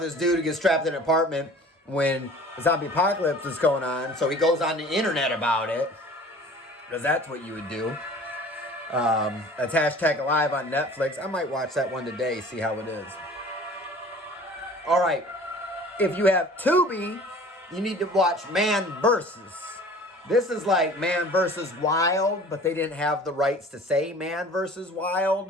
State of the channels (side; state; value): both; normal; correlation 0.46